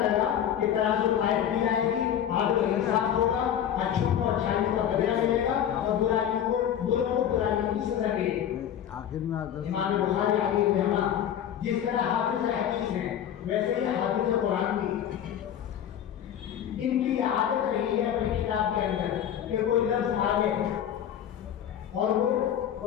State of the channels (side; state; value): right; quieter; 9.8 dB